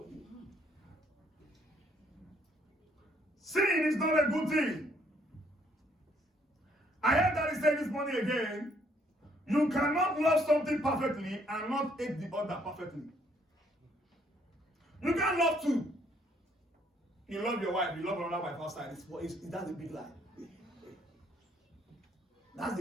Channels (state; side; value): normal; both; correlation 0.67